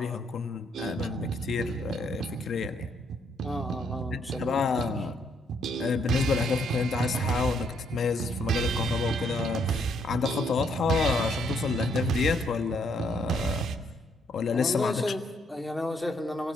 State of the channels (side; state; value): both; normal; correlation 0.71